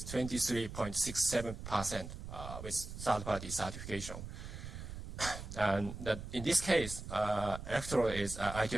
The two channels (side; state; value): right; noise; rumble, 9 dB below the sound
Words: 23.67% with third-party certification. And in this case, electrode is